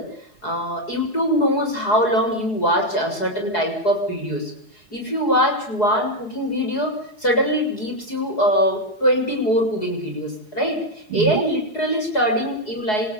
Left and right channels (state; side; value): late; right; 4.7 ms